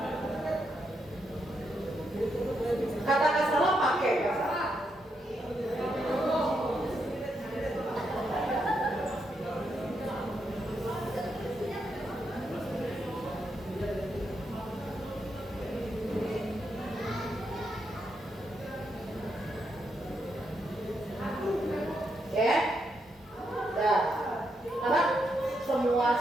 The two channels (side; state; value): both; normal; correlation 0.81